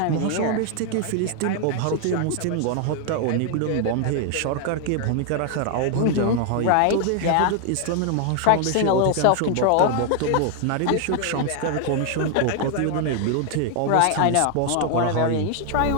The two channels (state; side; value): different; both; correlation 0.00